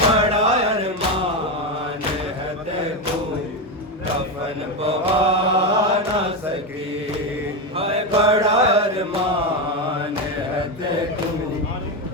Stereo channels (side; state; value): both; normal; correlation 0.12